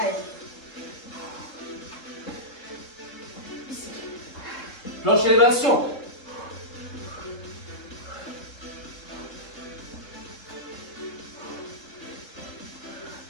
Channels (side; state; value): right; late; 3.7 ms